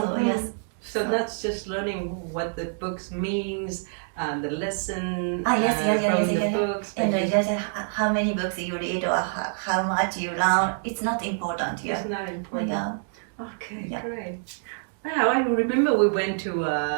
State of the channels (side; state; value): left; silent; digital silence